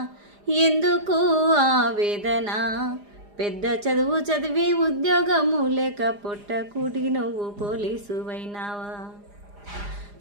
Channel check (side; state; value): left; late; 4.9 ms